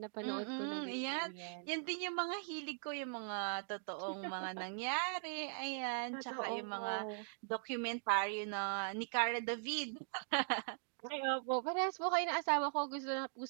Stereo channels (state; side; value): silent; left; digital silence